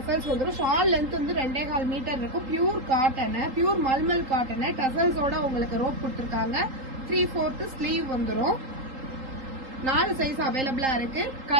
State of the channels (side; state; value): left; late; 3.8 ms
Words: வந்துடும். ஷால் லென்த் 2.25 மீட்டர் இருக்கும். Pure cotton, pure mulmul cotton டெசல்ஸோட உங்களுக்கு ரோப் கொடுத்துருக்காங்க. 3/4 ஸ்லீவ் வந்துடும். 4 சைஸ் அவைலபிளா இருக்கு.